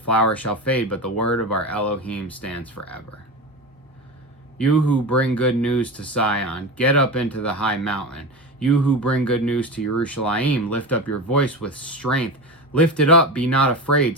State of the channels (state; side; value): normal; both; correlation 0.24